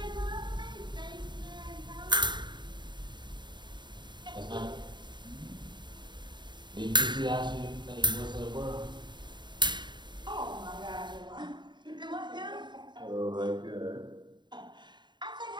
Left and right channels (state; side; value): late; left; 0.22 ms